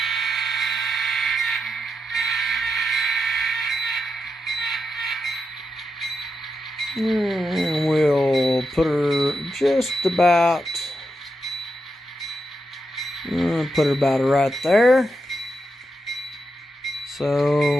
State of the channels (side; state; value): both; normal; correlation 0.86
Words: And we'll put her just about, put her about right there.